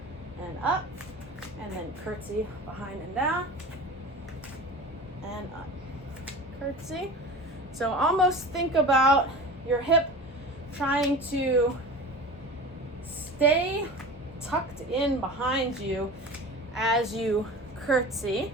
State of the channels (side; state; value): both; normal; correlation 0.34